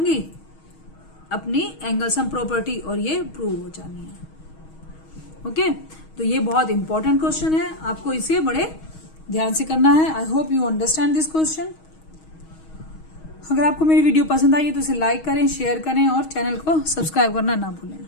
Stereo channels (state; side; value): late; right; 6.3 ms